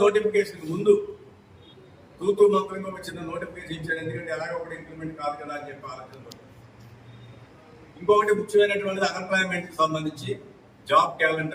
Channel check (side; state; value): both; identical; correlation 1.00